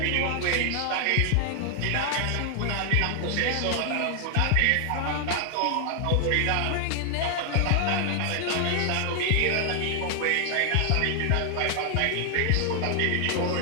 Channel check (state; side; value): different; both; correlation 0.00